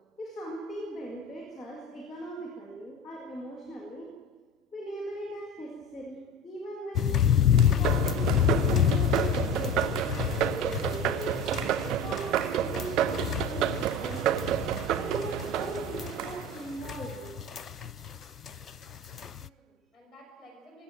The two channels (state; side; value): normal; both; correlation 0.31